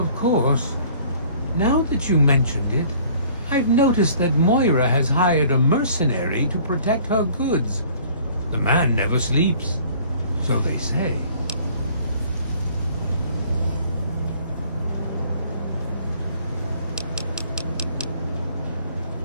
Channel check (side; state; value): both; inverted; correlation -0.54